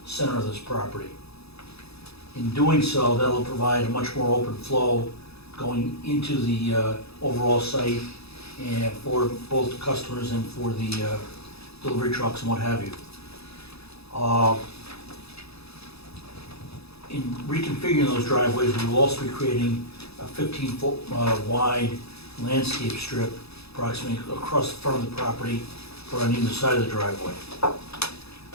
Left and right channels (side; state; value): right; late; 0.78 ms